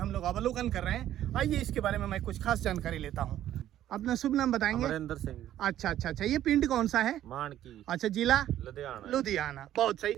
लोग अवलोकन कर रहे हैं। आइए इसके बारे में मैं कुछ खास जानकारी लेता हूं। अपना शुभ नाम बताएंगे? अमरिंदर सिंह। अच्छा, ये पिंड कौन सा है? मानकी। अच्छा, जिला लुधियाना। बहुत सही।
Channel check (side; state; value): left; quieter; 12.2 dB